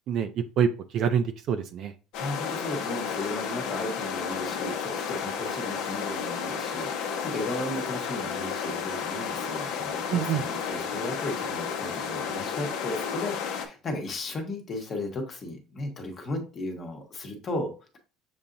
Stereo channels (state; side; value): normal; both; correlation 0.45